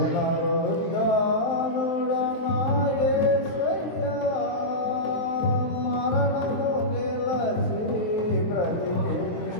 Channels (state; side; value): late; right; 23 ms